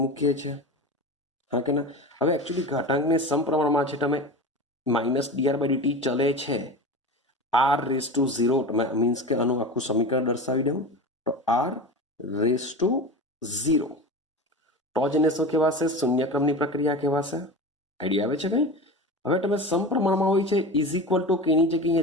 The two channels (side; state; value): both; normal; correlation 0.29